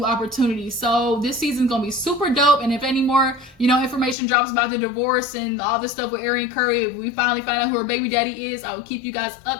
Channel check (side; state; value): right; drops out; at 4.2 s